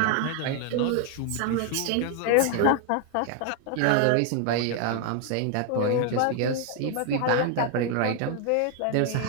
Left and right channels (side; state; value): both; different; correlation 0.00